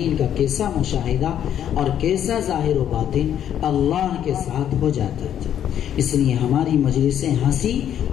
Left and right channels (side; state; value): right; quieter; 10.0 dB